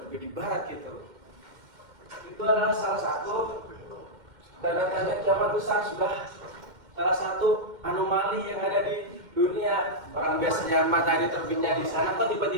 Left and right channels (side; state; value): left; late; 2.1 ms